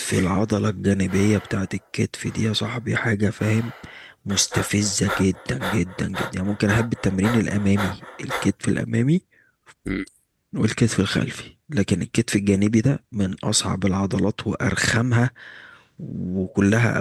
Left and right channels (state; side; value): identical; both; correlation 1.00